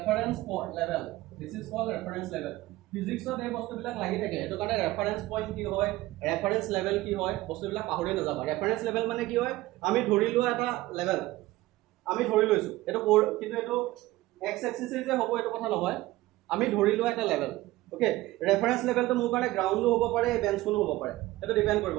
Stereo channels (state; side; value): quieter; left; 17.8 dB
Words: level this is called reference level ফিজিক্সত এই বস্তুবিলাক লাগি থাকে এটো কাৰণে ৰেফাৰেন্স পইণ্ট কি হয় ৰেফাৰেন্স লেভেল কি হয় বস্তুবিলাক পাহৰি নাযাবা ৰেফাৰেন্স লেভেল মানে কি হয় আমি ধৰি লোৱা এটা লেভেল আমি ধৰি লৈছো এটো কিন্তু এটো x এক্সিস যে হ'ব এটো কথা নহয় আমি ধৰি লোৱা এটা লেভেল ওকে ৰেফাৰেন্স লেভেলটো মোৰ কাৰণে গ্ৰাউণ্ডো হ'ব পাৰে বেঞ্চখনো হ'ব পাৰে এটো ডিপেন্ড কৰিব